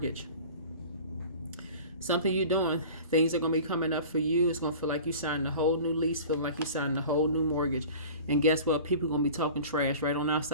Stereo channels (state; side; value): inverted; both; correlation -0.40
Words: Something you're doing. Things are going to be coming up for you. It's going to feel like you signed a whole new lease, feeling like you signed a whole new mortgage. And guess what? People are going to be talking trash right on